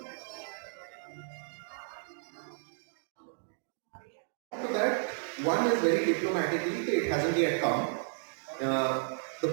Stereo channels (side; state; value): left; silent; digital silence